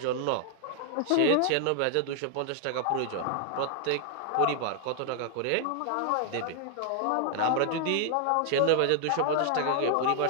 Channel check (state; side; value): different; both; correlation 0.00